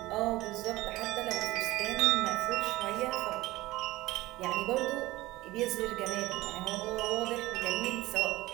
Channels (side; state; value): left; quieter; 18.5 dB